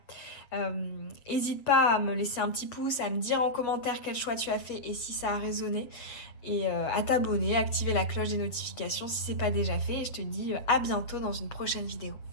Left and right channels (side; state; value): right; late; 7.7 ms